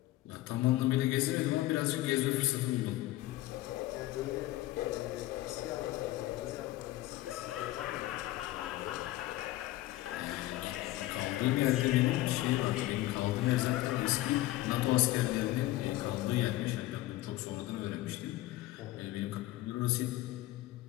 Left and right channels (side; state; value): right; quieter; 16.5 dB